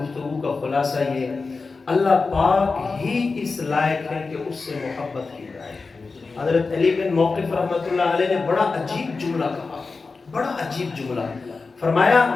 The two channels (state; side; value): quieter; right; 4.2 dB